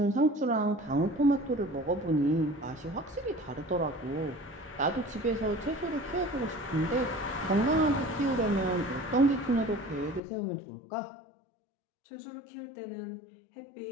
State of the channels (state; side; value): drops out; right; at 10.2 s